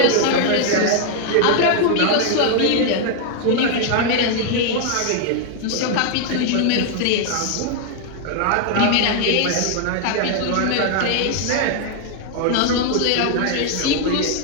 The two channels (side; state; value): both; different; correlation 0.00